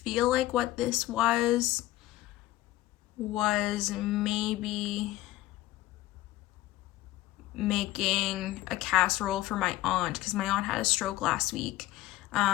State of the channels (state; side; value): quieter; right; 16.2 dB